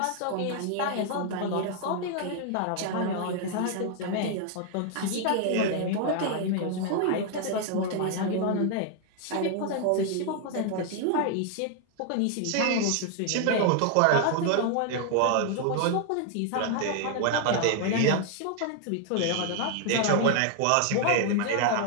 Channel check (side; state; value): both; different; correlation 0.00